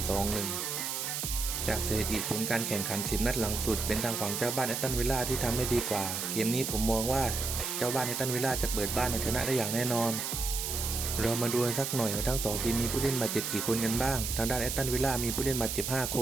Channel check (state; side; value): noise; right; hiss, 3 dB below the sound